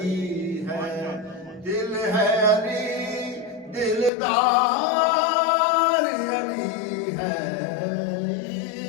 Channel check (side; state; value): right; drops out; at 4.1 s